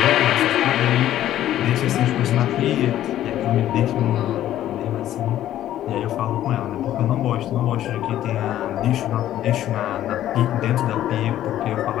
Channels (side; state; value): right; quieter; 12.5 dB